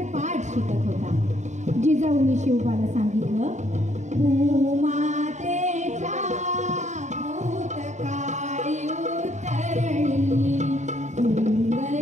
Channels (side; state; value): left; late; 0.34 ms